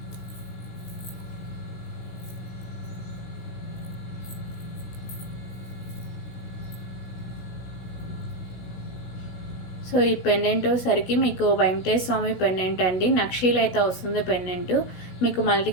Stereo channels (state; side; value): late; right; 16 ms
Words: సో ఈ పెండెంట్ సరికి మీకు వెంకటేశ్వర స్వామి పెండెంట్ అండి. నక్షీలు అయితే వస్తుంది పెండెంట్. మీకు